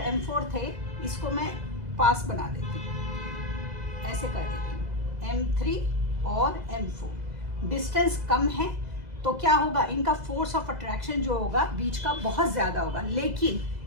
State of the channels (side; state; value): left; late; 2.0 ms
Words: m4 थे इसको मैं पास बना देती हूँ, ऐसे कर देती हूँ, m3 और m4 डिस्टेंस कम है तो क्या होगा? इनका फोर्स ऑफ अट्रैक्शन जो होगा बीच का बहुत ज्यादा होगा, लेकिन